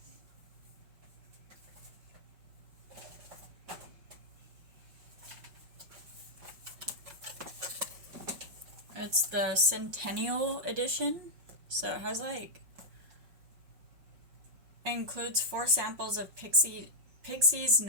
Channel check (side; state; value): left; late; 5.2 ms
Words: It's the Centennial Edition, so it has like, includes 4 samples of Pixie's